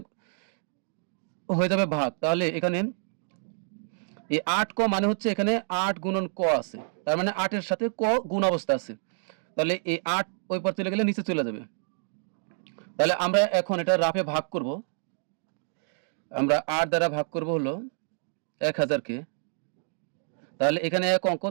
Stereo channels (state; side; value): silent; left; digital silence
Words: হয়ে যাবে ভাগ। তাহলে এখানে এই 8 ক মানে হচ্ছে এখানে 8 গুণন ক আছে, তার মানে 8 এর সাথে ক গুণ অবস্থা আছে। তাহলে এই 8 ওই পার চলে গেলে নিচে চলে যাবে। তাহলে আমরা এখন এটা রাফে ভাগ করব। আমরা 8 দ্বারা ভাগ করব হলো 1000 কে। তাহলে এখানে এক অঙ্ক,